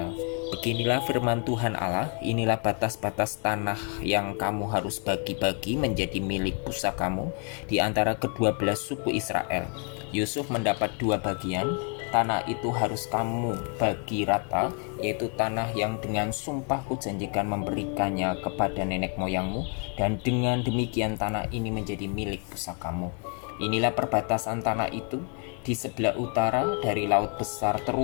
Beginilah firman Tuhan Allah, inilah batas-batas tanah yang kamu harus bagi-bagi menjadi milik pusakamu di antara kedua belas suku Israel. Yusuf mendapat 2 bagian, tanah itu harus kamu bagi rata, yaitu tanah yang dengan sumpah kujanjikan memberikannya kepada nenek moyangmu, dan dengan demikian tanah ini menjadi milik pusakamu. Inilah perbatasan tanah itu. Di sebelah utara dari Laut Besar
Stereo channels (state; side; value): quieter; right; 39.2 dB